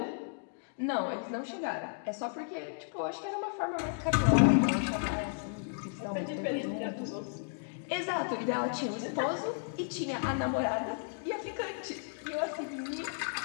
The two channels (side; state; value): right; silent; digital silence